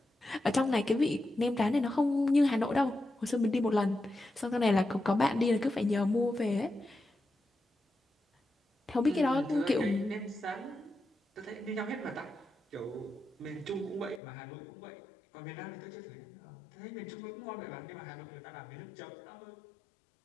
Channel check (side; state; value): right; drops out; at 14.2 s